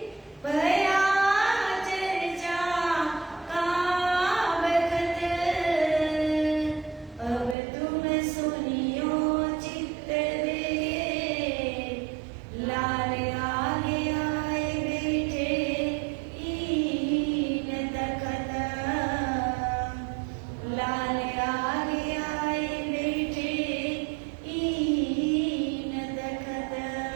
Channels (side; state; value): left; drops out; at 7.6 s